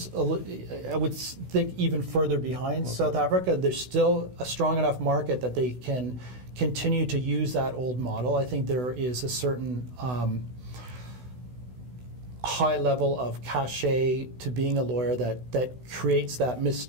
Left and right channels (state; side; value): late; left; 16 ms